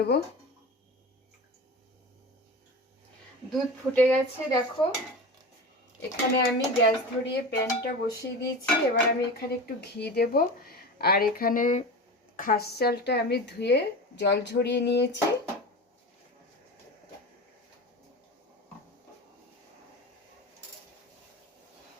দুধ ফুটে গেছে দেখো। এখানে আমি গ্যাস ধরিয়ে প্যানটা বসিয়ে দিয়েছি। এবার আমি এখানে একটু ঘি দেব। আর এখানে খাস চালটা আমি ধুয়ে জল ঝরিয়ে নিয়েছি।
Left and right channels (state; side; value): normal; both; correlation 0.29